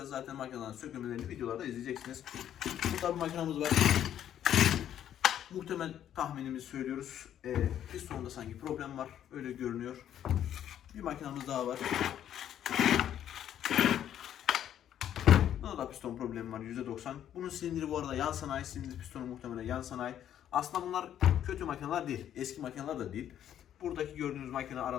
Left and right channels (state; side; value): quieter; right; 10.5 dB